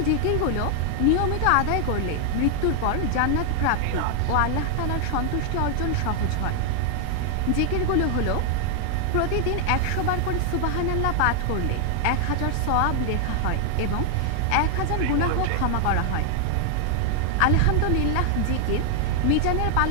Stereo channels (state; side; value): different; both; correlation 0.00